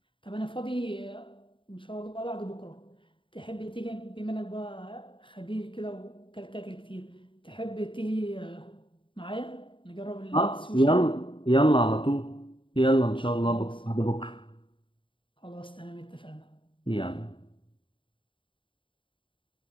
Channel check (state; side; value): late; right; 0.25 ms